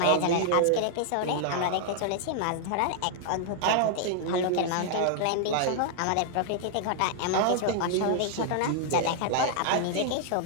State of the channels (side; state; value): both; different; correlation 0.00